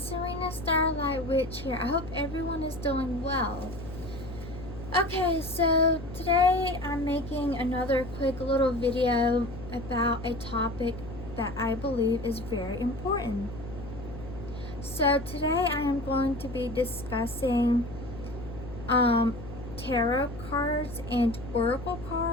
Starlight Witch here. I hope everyone is doing well. Okay, so today I'm making another quick little video about a topic that I believe is very important. So today I am going to be discussing tarot cards and oracle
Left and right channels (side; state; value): left; noise; hum, 12 dB below the sound